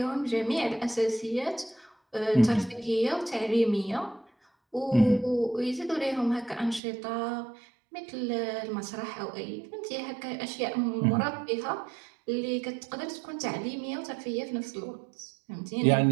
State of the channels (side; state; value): left; drops out; at 6.8 s